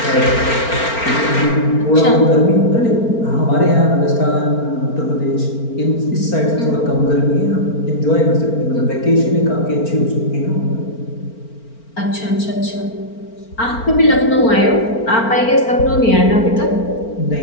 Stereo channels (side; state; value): right; late; 4.4 ms